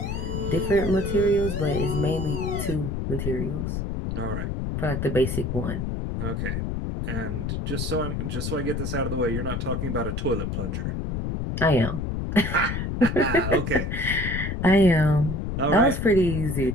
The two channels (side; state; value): left; noise; rumble, 2 dB below the sound